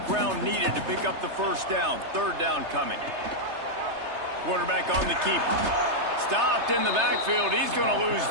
ground needed to pick up the first down. Third down coming. Quarterback on the keeper. Stopped in the backfield. He's going to lose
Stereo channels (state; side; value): late; left; 3.3 ms